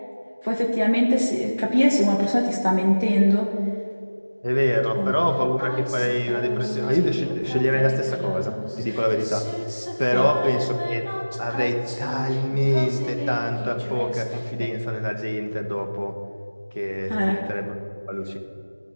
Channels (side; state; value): both; inverted; correlation -1.00